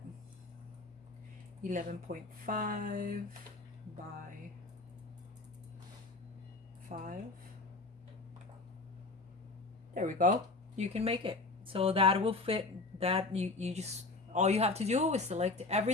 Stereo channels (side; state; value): right; quieter; 3.4 dB